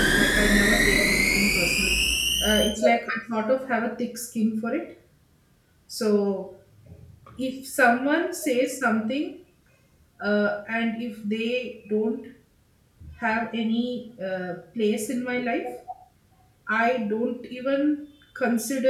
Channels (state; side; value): identical; both; correlation 1.00